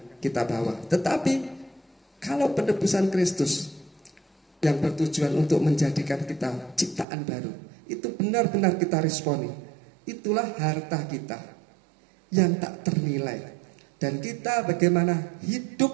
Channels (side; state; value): left; drops out; at 7.1 s